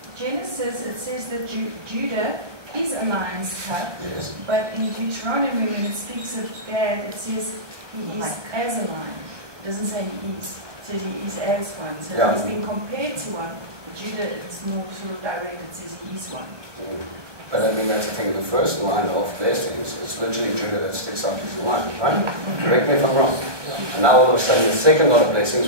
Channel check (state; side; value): late; left; 1.1 ms